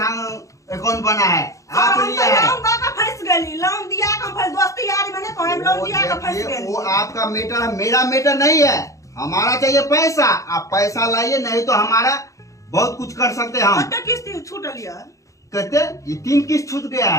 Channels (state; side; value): late; right; 0.15 ms